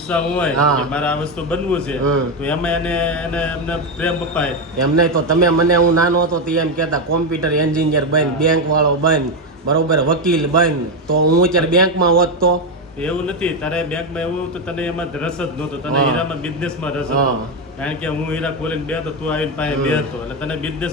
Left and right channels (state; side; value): normal; both; correlation 0.09